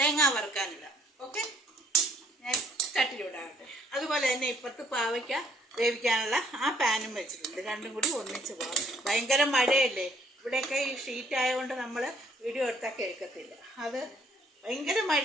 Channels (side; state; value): both; normal; correlation 0.63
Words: വറുക്കാനിടാം. ഓക്കെ, ഞാൻ ചട്ടിയിലിടാറുണ്ട്. അതുപോലെ തന്നെ ഇപ്പുറത്ത് പാവയ്ക്ക വേവിക്കാനുള്ള ആ പാനും വെച്ചിട്ടുണ്ട്. രണ്ടും കൂടി ഒന്നിച്ച് പോകാം. ഭയങ്കര മഴയല്ലേ ഇവിടെയൊക്കെ. ഈ ഷീറ്റ് ആയതുകൊണ്ട് നമ്മൾ വീഡിയോ എടുത്താൽ കേൾക്കത്തില്ല. അത് ഭയങ്കര